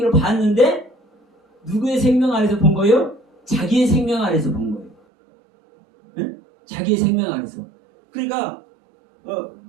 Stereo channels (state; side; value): drops out; left; at 5.0 s